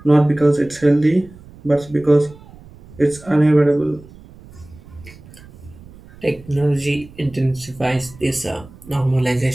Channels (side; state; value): right; noise; rumble, 21 dB below the sound